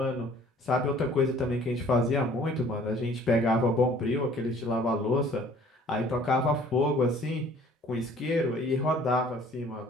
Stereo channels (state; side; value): normal; both; correlation 0.54